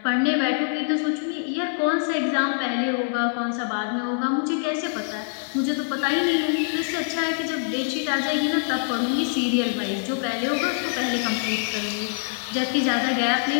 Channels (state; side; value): silent; right; 62 dB below the other